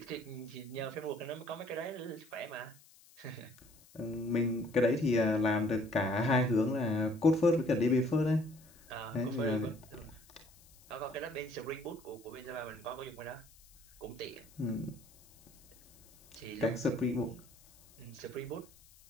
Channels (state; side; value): noise; left; hiss, 26 dB below the sound